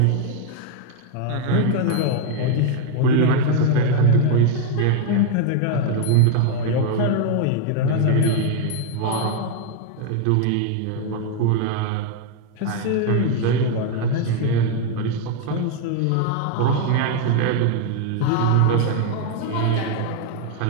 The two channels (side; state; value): both; different; correlation 0.00